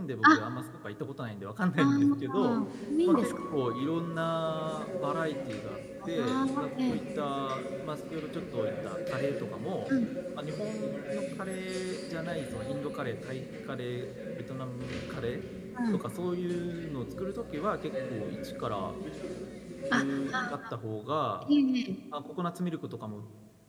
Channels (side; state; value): both; identical; correlation 1.00